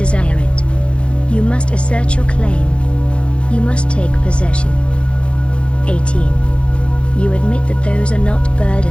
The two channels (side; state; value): right; late; 0.059 ms